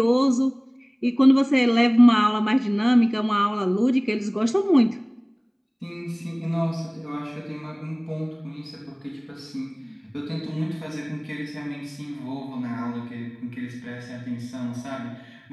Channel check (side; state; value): both; identical; correlation 1.00